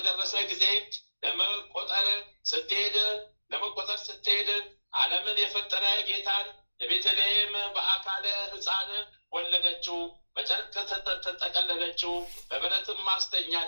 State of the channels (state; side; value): inverted; both; correlation -1.00